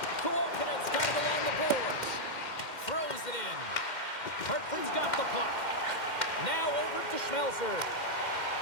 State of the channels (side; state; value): right; late; 2.1 ms